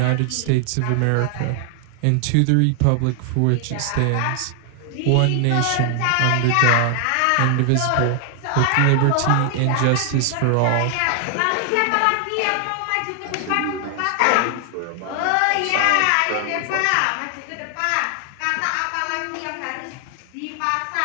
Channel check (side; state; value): both; different; correlation 0.00